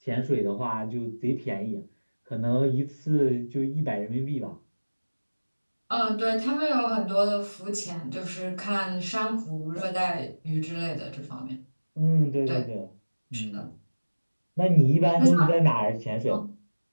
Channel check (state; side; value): inverted; both; correlation -1.00